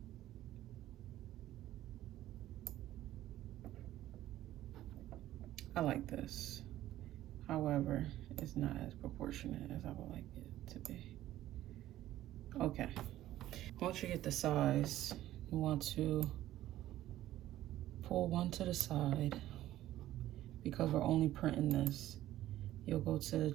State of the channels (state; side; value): quieter; left; 14.0 dB